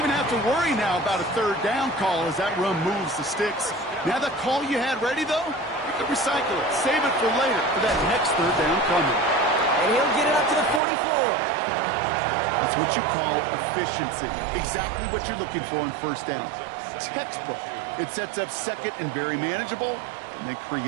have to worry now about a third down call as that run moves the sticks. Now that call you had ready, though, you can recycle it. Save it for later for that next third down coming. And he'll get it up to the 44. That's what you call efficiency. Exactly what you're looking for in first down. Textbook. It sets up second and very manageable, and then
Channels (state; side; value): drops out; left; at 10.8 s